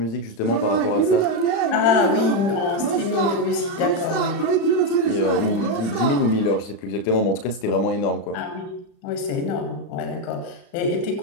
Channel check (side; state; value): right; late; 35 ms